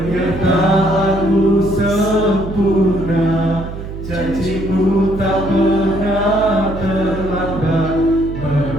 sempurna, janji-Mu tak pernah terlambat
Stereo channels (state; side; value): noise; right; hum, 9 dB below the sound